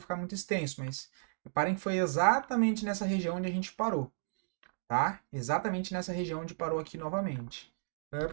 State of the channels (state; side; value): silent; left; digital silence